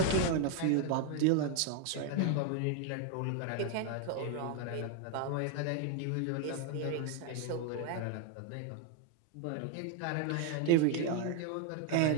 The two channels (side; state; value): both; different; correlation 0.01